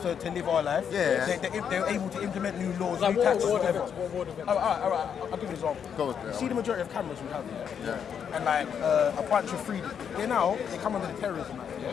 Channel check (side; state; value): right; quieter; 7.7 dB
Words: live our life. They're able to implement new laws, new taxes, whatever. Alright, I'll give you an example. You see the majority of cameras we have here, and like a bunch of freedom. They come under the Terrorism Act,